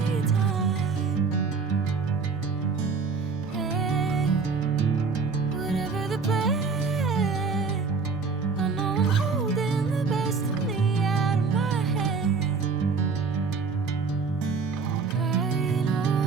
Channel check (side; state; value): left; quieter; 4.8 dB